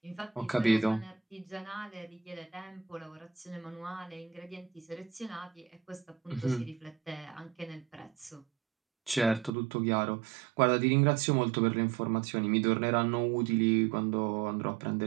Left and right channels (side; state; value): left; drops out; at 9.5 s